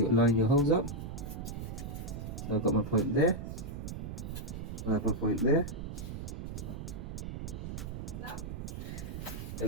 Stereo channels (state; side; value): noise; right; rumble, 7 dB below the sound